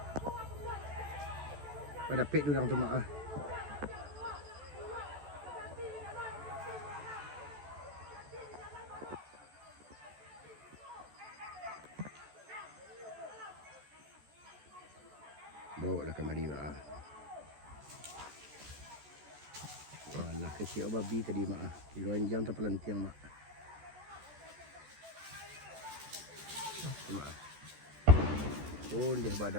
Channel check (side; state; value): left; late; 14 ms